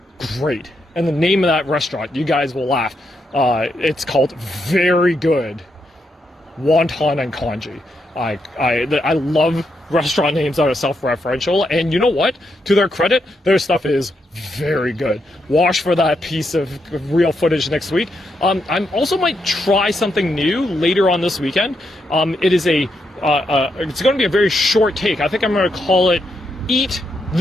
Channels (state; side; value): normal; both; correlation 0.81